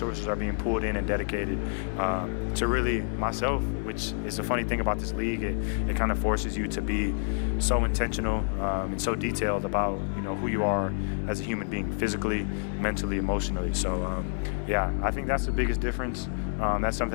are being pulled in and dedicated to really myself, which is the funny thing about this league. It kind of forces you to be so intentional and so detailed about who you are as a human being, physically, mentally, emotionally. So yeah, I think that's the biggest difference. That's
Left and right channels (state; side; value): silent; right; 58 dB below the other